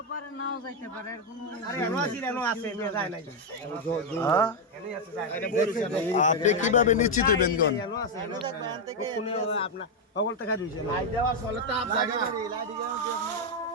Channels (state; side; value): normal; both; correlation 0.02